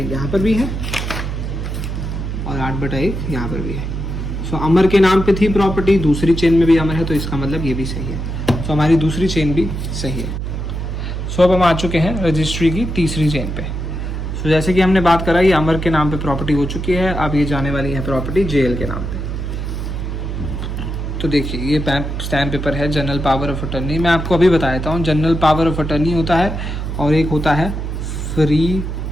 यहाँ पर भी है और 8/1 यहाँ पर भी है। सो अमर के नाम पे थी प्रॉपर्टी, दूसरी चेन में भी अमर है, तो इसका मतलब ये भी सही है। सो हमारी दूसरी चेन भी सही है। सो अब हम आ चुके हैं रजिस्ट्री की तीसरी चेन पे। सो जैसे कि हमने बात करा, ये अमर के नाम पे प्रॉपर्टी हो चुकी है, अब ये जाने वाली है प्रॉपर्टी JL के नाम पे। तो देखिए ये स्टैम्प पेपर है जनरल पावर ऑफ अटर्नी। मैं आपको अभी बता देता हूँ, जनरल पावर ऑफ अटर्नी होता है और एक होता है फ्री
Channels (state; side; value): noise; right; hum, 4 dB below the sound